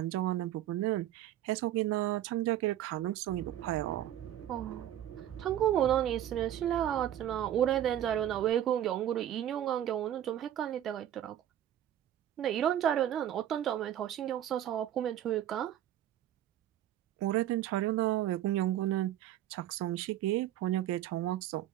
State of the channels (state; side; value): quieter; left; 11.7 dB